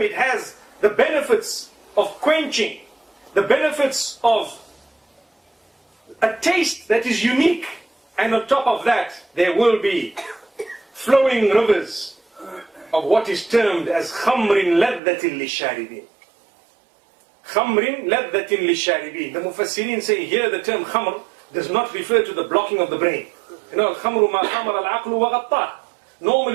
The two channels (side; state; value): left; drops out; at 15.0 s